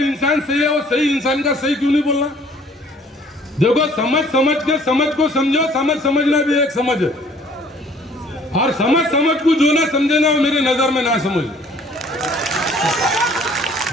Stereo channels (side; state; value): both; normal; correlation 0.56